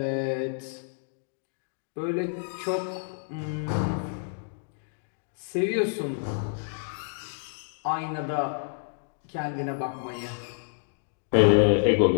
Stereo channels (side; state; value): right; silent; digital silence